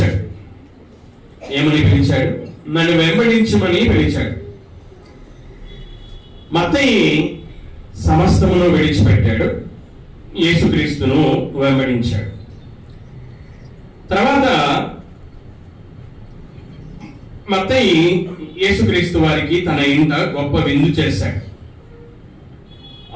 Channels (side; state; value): both; identical; correlation 1.00